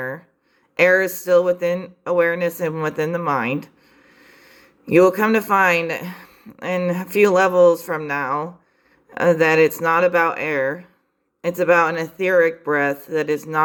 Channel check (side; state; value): both; identical; correlation 1.00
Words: Air is still within awareness and within the mind. You will come to find in a few levels from now that it's not about air. It's about an etheric breath that is